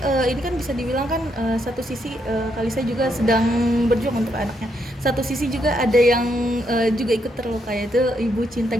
ini kan bisa dibilang kan satu sisi Kak Lisa juga sedang berjuang untuk anaknya. Satu sisi juga ada yang juga ikut terluka yaitu ibu cinta.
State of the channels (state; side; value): normal; both; correlation 0.77